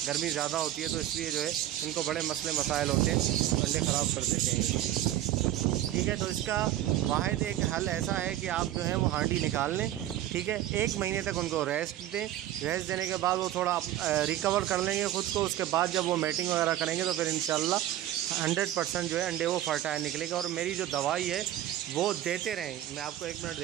गर्मी ज़्यादा होती है, तो इसलिए जो है इनको बड़े मसले मसाइल होते हैं, अंडे ख़राब कर देते हैं। ठीक है, तो इसका वाहिद एक हल ऐसा है कि आप जो है वो हांडी निकाल लें, ठीक है, 1 महीने तक उनको रेस्ट दें। रेस्ट देने के बाद वो थोड़ा रिकवर कर लेंगे ख़ुद को, उसके बाद जब वो मैटिंग वगैरह करेंगे तो फिर इंशाल्लाह 100% जो है अंडे वो फर्टाइल निकलेगा। और मेरी जो दवाई है वो देते रहें। मैं आपको 1 मिनट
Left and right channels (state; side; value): quieter; left; 13.2 dB